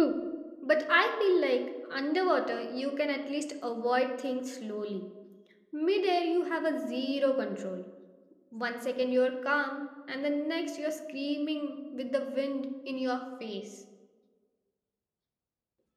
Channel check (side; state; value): both; identical; correlation 1.00